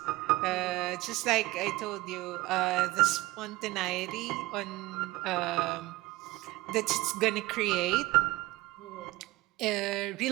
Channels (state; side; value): quieter; left; 19.5 dB